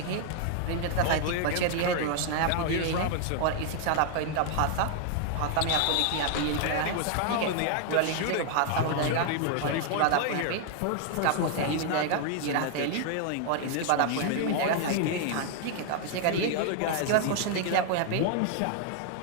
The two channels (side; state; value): both; different; correlation 0.00